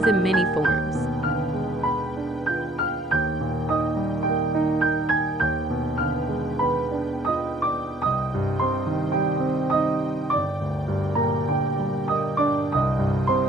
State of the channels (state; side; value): normal; both; correlation 0.61